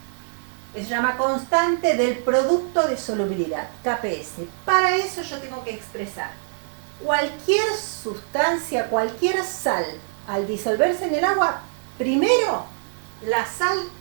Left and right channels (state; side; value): silent; left; 57 dB below the other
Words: Se llama constante del producto de solubilidad, KPS. Para eso yo tengo que expresar cualquier sustancia, cualquier sal, al disolverse en el agua, primero la sal